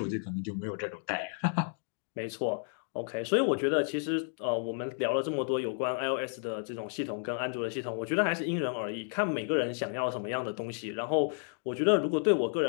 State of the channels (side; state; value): right; silent; 57 dB below the other